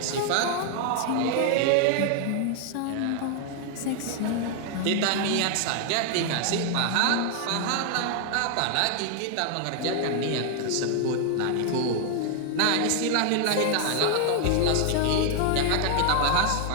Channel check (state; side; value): different; both; correlation 0.00